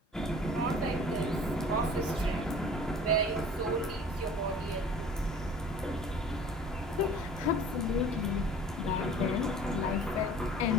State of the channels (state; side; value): normal; both; correlation 0.46